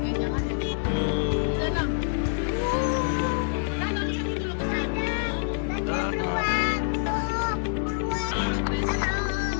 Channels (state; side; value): silent; right; digital silence